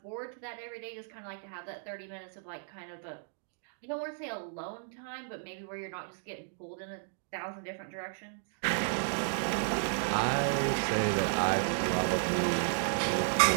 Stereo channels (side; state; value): left; silent; digital silence